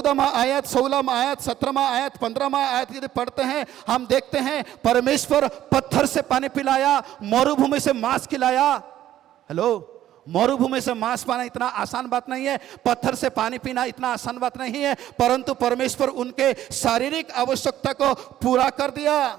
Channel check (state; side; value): quieter; left; 12.5 dB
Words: आयत, 16वां आयत, 17वां आयत, 15वां आयत यदि पढ़ते हैं, हम देखते हैं परमेश्वर पत्थर से पानी पिलाया, मरुभूमि से मांस खिलाया। हेलो, मरुभूमि से मांस पाना इतना आसान बात नहीं है, पत्थर से पानी पीना इतना आसान बात नहीं है, परंतु परमेश्वर उनके शारीरिक आवश्यकता को पूरा कर दिया।